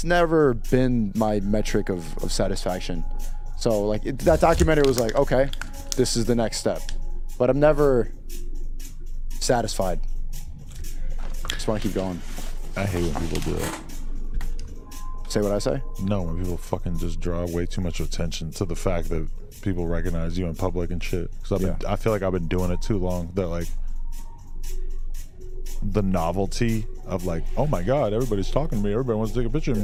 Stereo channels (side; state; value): both; identical; correlation 1.00